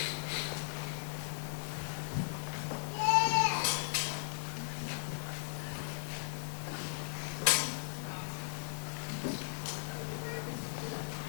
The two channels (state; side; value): silent; right; 53 dB below the other